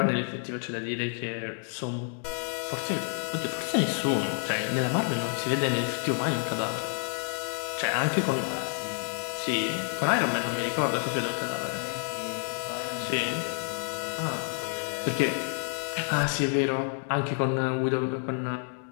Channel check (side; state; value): right; silent; 58 dB below the other